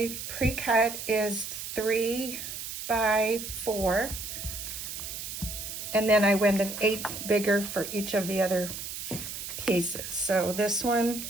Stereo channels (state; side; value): noise; right; hiss, 7 dB below the sound